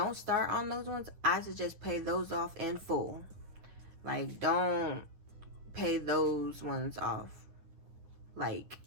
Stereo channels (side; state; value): left; late; 9.7 ms